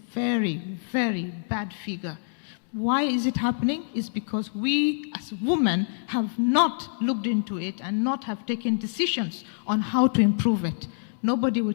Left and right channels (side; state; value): right; silent; digital silence